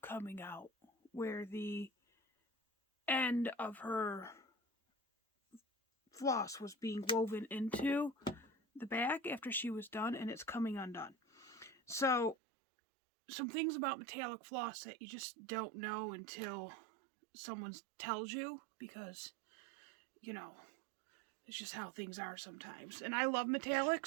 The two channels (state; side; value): drops out; left; at 12.4 s